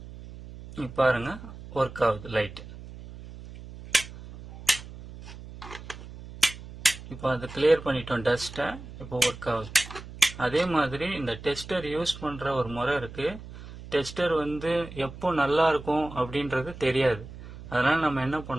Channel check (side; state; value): right; noise; hum, 14 dB below the sound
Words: பாருங்க ஒர்க் ஆகுது லைட். இப்போ அதை கிளியர் பண்ணிட்டோம் டஸ்ட்டை, இப்போ ஒர்க் ஆகுது. அதே மாதிரி இந்த டெஸ்டர் யூஸ் பண்ற ஒரு முறை இருக்கு. டெஸ்டர் வந்து எப்போ நல்லா இருக்கும் அப்படின்றது தெரியாது. அதனால நம்ம என்ன